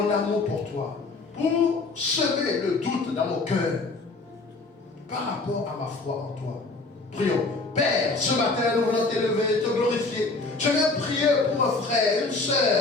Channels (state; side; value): quieter; right; 3.5 dB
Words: amour pour toi, pour semer le doute dans mon cœur par rapport à ma foi en toi. Prions. Père, ce matin, nous voulons t'élever, te glorifier. Je viens prier pour un frère, une